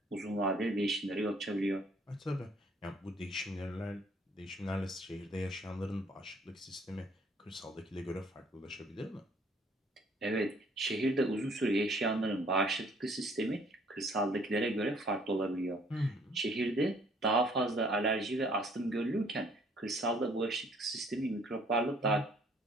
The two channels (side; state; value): both; normal; correlation 0.60